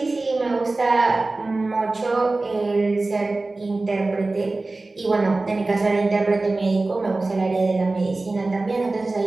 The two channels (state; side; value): quieter; left; 3.2 dB